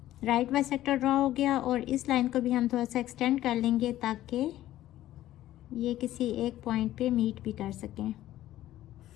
राइट बाइसेक्टर ड्रॉ हो गया और इस लाइन को भी हम थोड़ा सा एक्सटेंड कर लेंगे ताकि ये किसी एक पॉइंट पे मीट भी कर सकें।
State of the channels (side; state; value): right; quieter; 14.0 dB